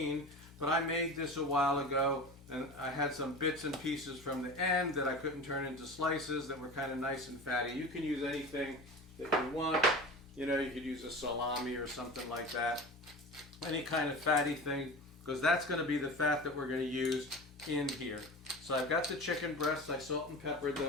But I made this a while ago, and I had some bits and pieces from the end that I couldn't turn into slices that were kind of nice and fatty. You can use anything that you want. You know, you could use a salami or something like that. Any kind of fatty thing, because that's going to be the fat that we're going to use in here. So I've got the chicken breasts, I salt and peppered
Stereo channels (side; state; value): both; normal; correlation 0.33